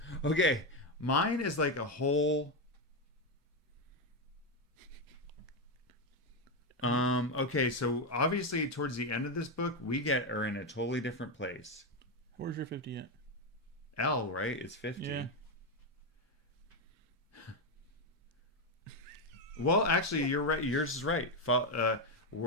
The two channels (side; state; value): both; normal; correlation 0.08